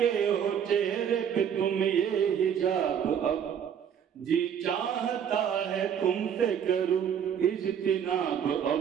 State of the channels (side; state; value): left; quieter; 8.3 dB